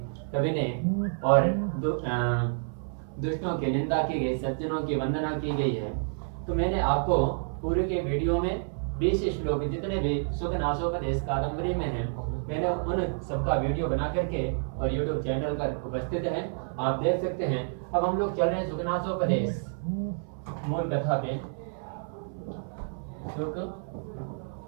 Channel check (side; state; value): left; silent; 58 dB below the other